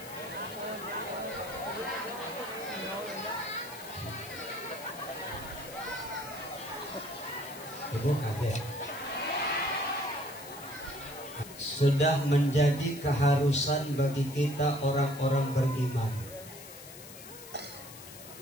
Sudah menjadi keharusan bagi kita orang-orang beriman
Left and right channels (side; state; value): left; noise; hiss, 15 dB below the sound